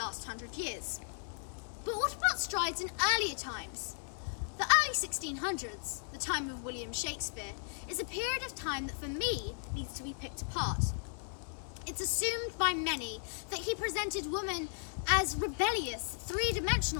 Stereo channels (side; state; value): right; silent; digital silence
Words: 100 years. But what about strides in earlier times? The early 1600s, the time of William Shakespeare, is a period of time that for me needs to be picked apart. It's assumed by many that he presented women as rebellious,